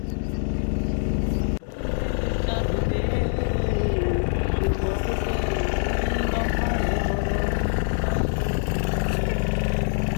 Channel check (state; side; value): silent; right; digital silence